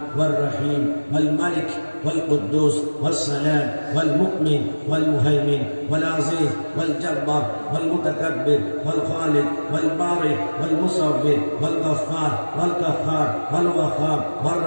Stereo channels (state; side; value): inverted; both; correlation -1.00